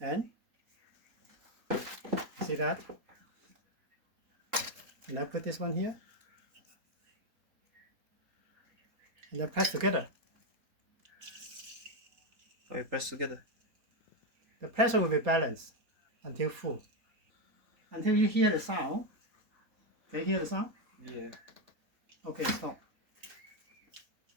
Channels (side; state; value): left; late; 3.7 ms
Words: see that? And I put this one here. And then press together. Oh, you press together. The pressure will be balanced until full. Until you hear the sound. Can you hear the sound? Yeah. Okay, stop.